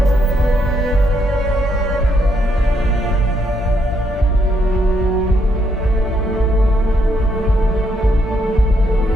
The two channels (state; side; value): normal; both; correlation 0.75